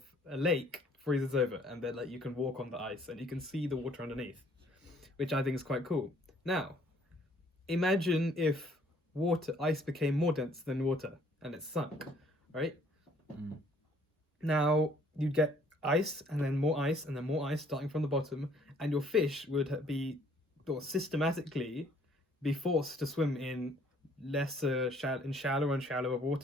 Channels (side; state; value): both; normal; correlation 0.61